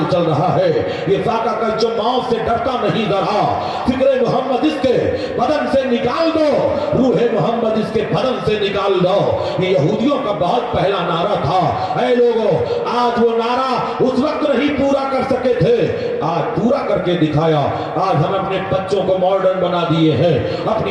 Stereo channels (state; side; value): identical; both; correlation 1.00